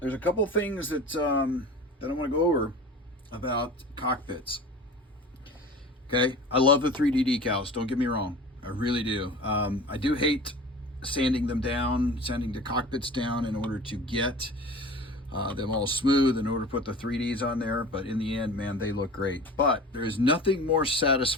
a couple things that I want to go over about cockpits. Okay, I love the 3D decals, don't get me wrong. I really do. I do hate sanding them down, sanding the cockpits down in order to get them all smooth, in order to put the 3Ds on there. But in the end, man, they look great. But there's nothing more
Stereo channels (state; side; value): normal; both; correlation 0.38